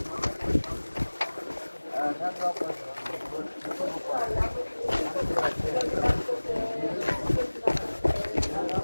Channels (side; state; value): both; inverted; correlation -1.00